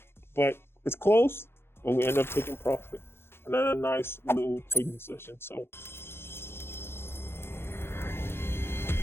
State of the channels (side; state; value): right; late; 0.11 ms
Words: But it's close. But we end up taking profit. Another nice little trading session. So